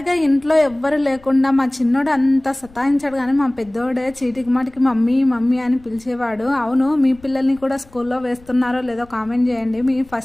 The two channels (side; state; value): left; noise; rumble, 26 dB below the sound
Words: ఇంట్లో ఎవ్వరు లేకుండా మా చిన్నోడు అంత సతాయించాడు, కానీ మా పెద్దోడే చీటికి మాటికి మమ్మీ మమ్మీ అని పిలిచేవాడు. అవును, మీ పిల్లల్ని కూడా స్కూల్లో వేస్తున్నారో లేదో కామెంట్ చేయండి. మీ